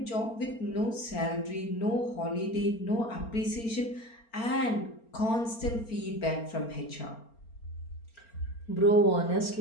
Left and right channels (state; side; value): late; right; 4.4 ms